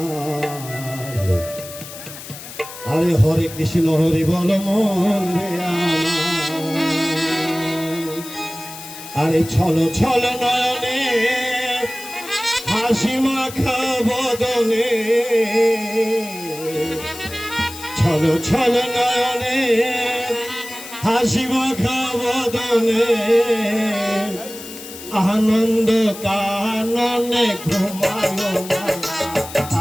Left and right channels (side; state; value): left; noise; hiss, 13 dB below the sound